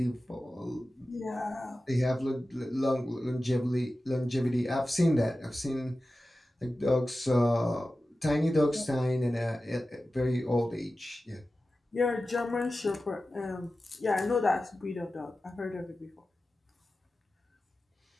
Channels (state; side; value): normal; both; correlation 0.94